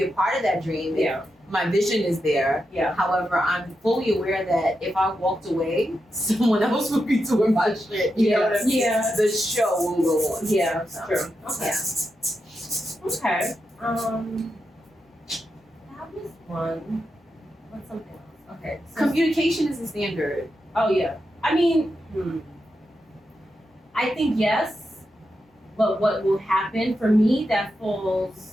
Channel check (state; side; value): normal; both; correlation 0.87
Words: a part of that dream. Yeah. My vision is there. Yeah. However, I'm fully aware that if I walked away, someone else would be doing my shit. You know what I mean? Yeah. The show will go on. Yeah, that's true. Okay. Yeah. That was one. What's something else? Okay. So Communication is a standard. Oh yeah. I mean, I think yes. But what will happen for me that